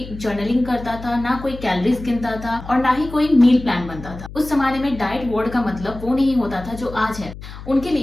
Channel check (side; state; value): left; noise; hum, 13 dB below the sound